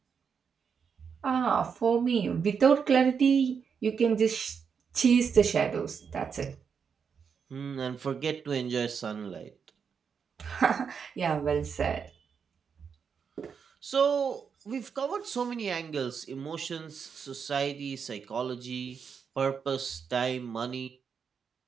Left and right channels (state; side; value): quieter; left; 6.5 dB